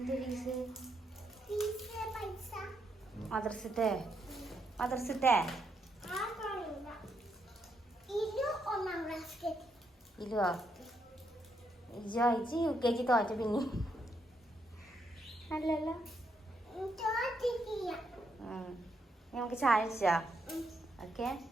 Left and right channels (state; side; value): normal; both; correlation 0.78